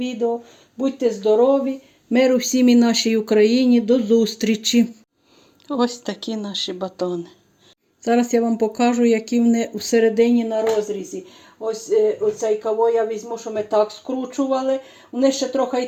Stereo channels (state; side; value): identical; both; correlation 1.00